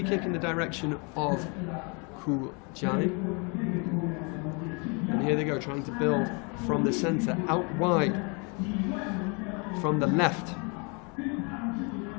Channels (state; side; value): quieter; right; 33.1 dB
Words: kick in the direction of Guizhou. And here they go, trying to build from the centre, out wide. From the left